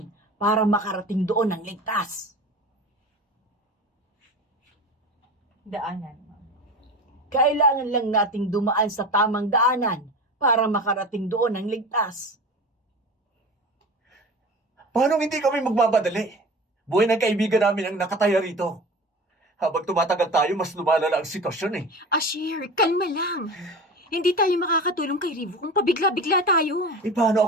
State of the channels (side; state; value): both; normal; correlation 0.33